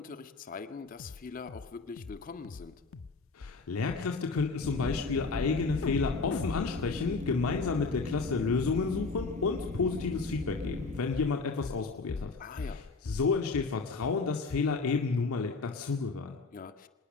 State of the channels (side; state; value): right; quieter; 4.1 dB